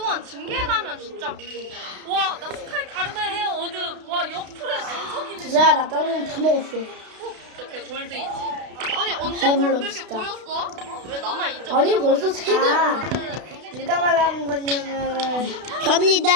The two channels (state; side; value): late; left; 32 ms